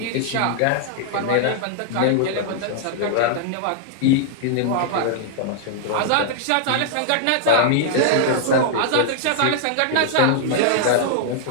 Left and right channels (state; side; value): different; both; correlation -0.01